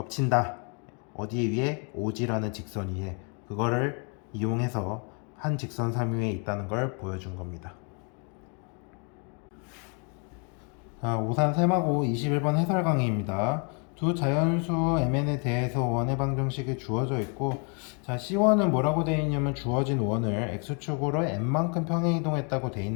어디 위에? OG라는 직선 위에. 그거를 이용해서 한 직선 3위에 있다는 걸 보여준 겁니다. 자, 오산 세마고 21번 해설 강의입니다. 두 자연수 MN에 대해서 원의 방정식이 주어져 있고 자 C1은 뭐라고 되어 있냐면 주어진 원을 X축으로 N만큼 평행 이동했다고 되어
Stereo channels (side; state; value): right; quieter; 37.2 dB